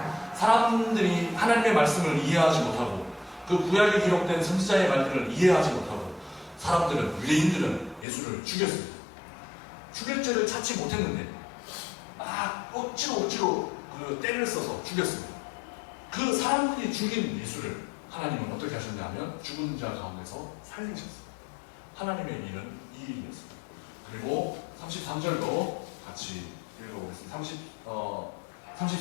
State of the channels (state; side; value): drops out; right; at 8.1 s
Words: 사람들이 하나님의 말씀을 이해하지 못하고 그 구약에 기록된 선지자의 말들을 이해하지 못하고 사람들은 유대인들은 예수를 죽였습니다. 죽일 죄를 찾지 못했는데 억지로 그 때를 써서 죽였습니다. 그 사람들이 죽인 예수를 하나님은 어떻게 하셨냐면 죽은 자 가운데서 살리셨습니다. 하나님의 일은 이 일이었습니다. 그리고 33절도 같이 읽어보겠습니다.